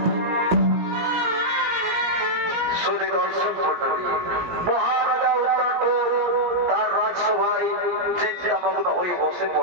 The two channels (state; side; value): late; left; 17 ms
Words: মহারাজা তার রাজসভায় চিন্তামগ্ন হয়ে বসে